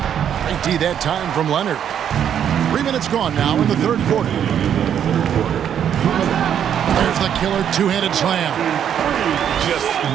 Great D that time from Leonard. 3 minutes gone now in the third quarter. There's the killer two-handed slam. Just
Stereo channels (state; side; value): quieter; left; 9.1 dB